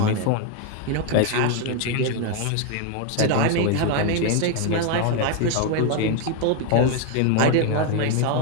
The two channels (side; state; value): both; different; correlation 0.01